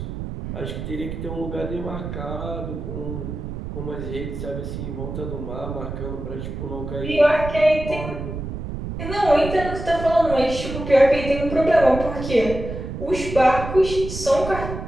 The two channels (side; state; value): right; noise; rumble, 7 dB below the sound